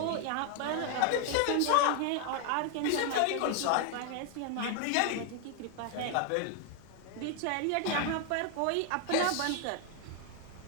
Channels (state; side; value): different; both; correlation 0.00